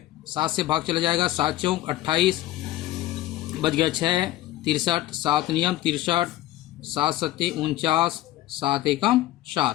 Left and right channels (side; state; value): right; quieter; 15.6 dB